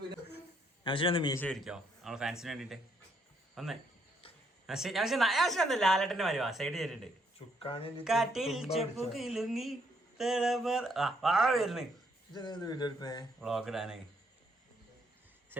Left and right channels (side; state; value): both; normal; correlation 0.72